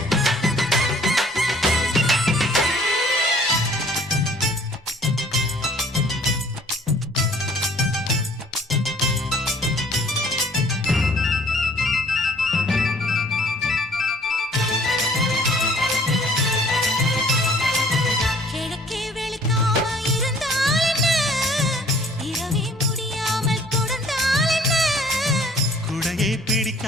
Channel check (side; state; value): both; normal; correlation 0.56